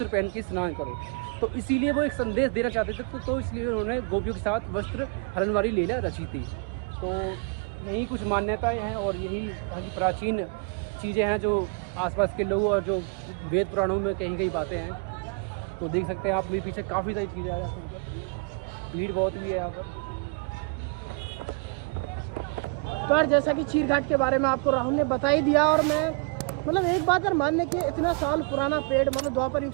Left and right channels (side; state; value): left; quieter; 33.1 dB